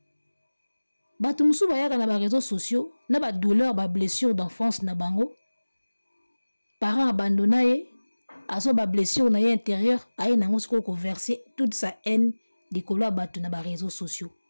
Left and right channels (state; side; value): inverted; both; correlation -1.00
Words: Batu musu bayaka na ba réseaux sociaux, na ba douleur, ba blessure d'enfance na bango. Parents abandonnés, aso ba blessure na ye intérieur, aye nango siko ko verser toute sa haine di kolo abatu na ba réseaux sociaux.